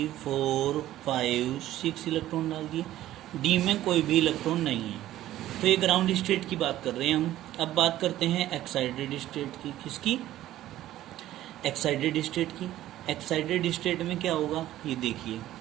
4 5 6 इलेक्ट्रॉन डाल दिए। D में कोई भी इलेक्ट्रॉन नहीं है। तो ये ग्राउंड स्टेट की बात कर रहे हैं हम। अब बात करते हैं एक्साइटेड स्टेट की। किसकी, एक्साइटेड स्टेट की। एक्साइटेड स्टेट में क्या होगा, ये देखिए,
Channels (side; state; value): left; quieter; 13.9 dB